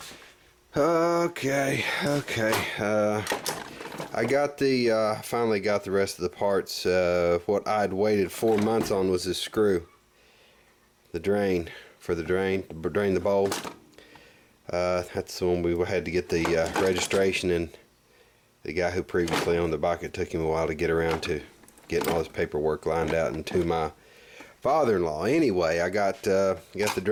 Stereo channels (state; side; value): identical; both; correlation 1.00